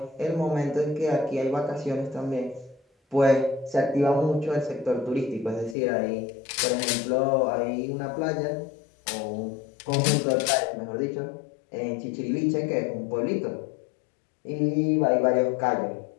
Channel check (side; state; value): right; drops out; at 5.8 s